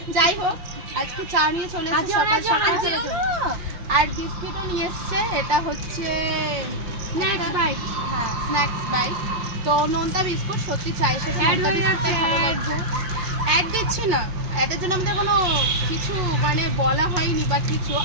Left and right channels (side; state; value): left; late; 5.7 ms